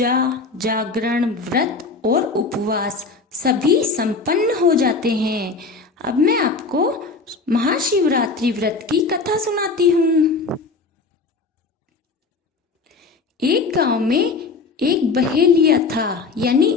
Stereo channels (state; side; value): quieter; right; 4.2 dB